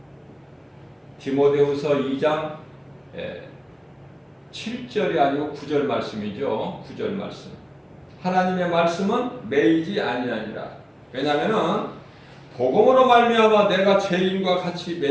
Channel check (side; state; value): both; identical; correlation 1.00